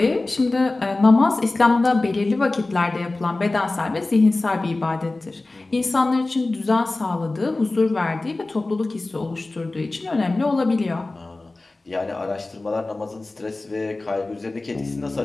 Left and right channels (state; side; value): quieter; right; 3.1 dB